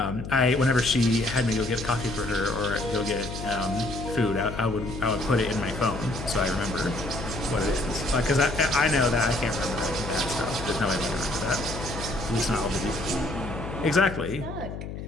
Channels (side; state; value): left; noise; hum, 8 dB below the sound